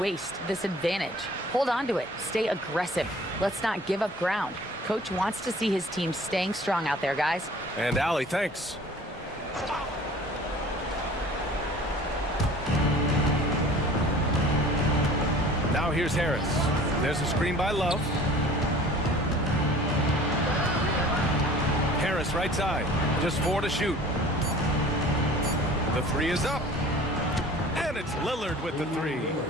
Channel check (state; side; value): normal; both; correlation 0.47